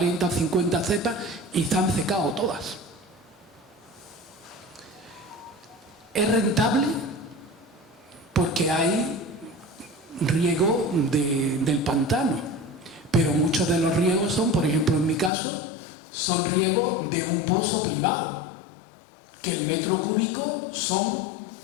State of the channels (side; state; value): right; drops out; at 15.3 s